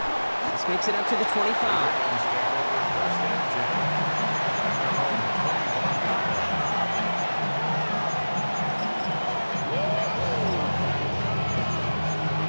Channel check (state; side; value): inverted; both; correlation -1.00